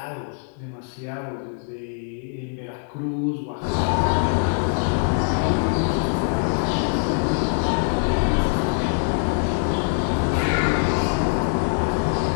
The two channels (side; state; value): right; silent; digital silence